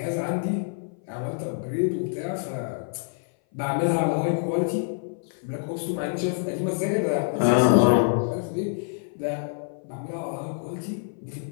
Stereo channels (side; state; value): right; silent; 58 dB below the other